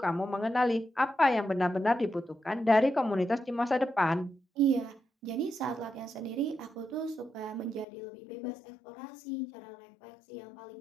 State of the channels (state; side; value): drops out; right; at 7.9 s